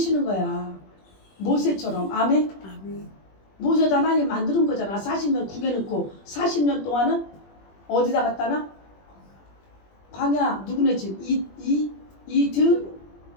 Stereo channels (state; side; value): late; right; 21 ms